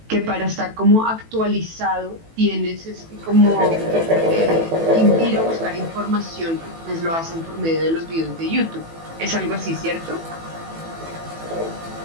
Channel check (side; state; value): left; late; 18 ms